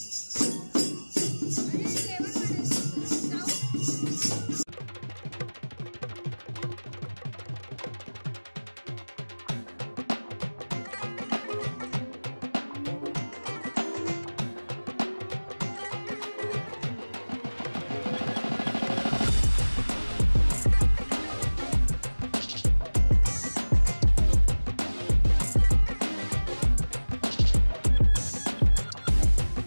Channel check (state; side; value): inverted; both; correlation -1.00